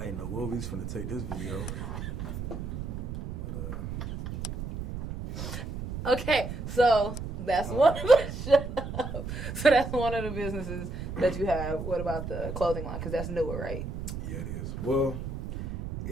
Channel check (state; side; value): noise; right; rumble, 6 dB below the sound